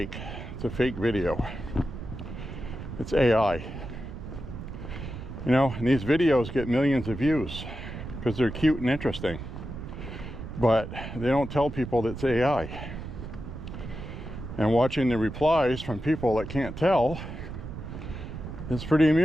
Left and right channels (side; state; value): right; noise; rumble, 9 dB below the sound